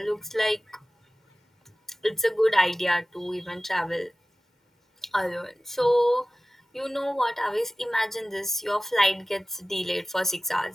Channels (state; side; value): normal; both; correlation 0.97